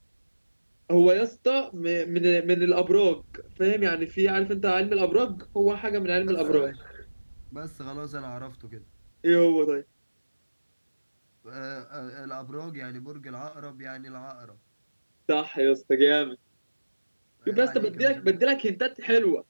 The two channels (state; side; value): inverted; both; correlation -1.00